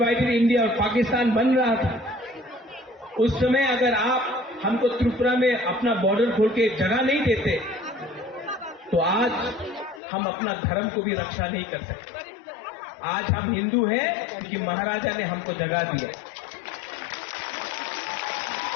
इंडिया और पाकिस्तान बन रहा था, उस समय अगर आप हमको त्रिपुरा में अपना बॉर्डर खोल के जगह नहीं देते, तो आज हम अपना धर्म को भी रक्षा नहीं कर सकते। आज हम हिंदू हैं क्योंकि महाराजा ने हमको जगह दिया।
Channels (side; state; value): right; drops out; at 10.0 s